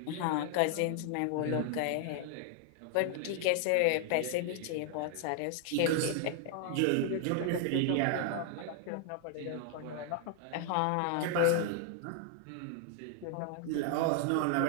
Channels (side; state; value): both; different; correlation 0.00